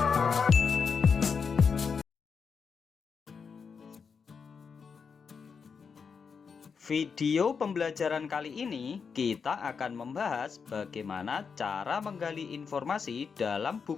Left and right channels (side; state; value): right; quieter; 5.8 dB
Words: Video pembelajaran kali ini kita akan membahas bagaimana cara menggali informasi dalam